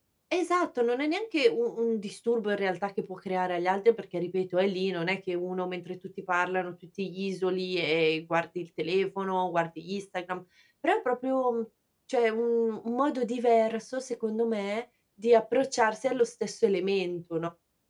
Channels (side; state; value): both; identical; correlation 1.00